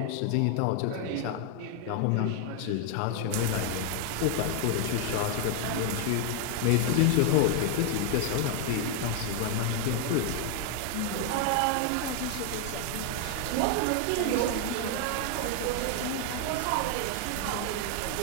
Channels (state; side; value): different; both; correlation 0.00